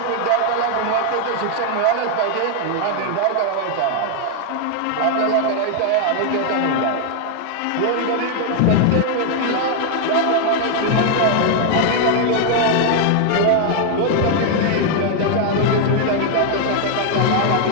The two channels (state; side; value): different; both; correlation 0.00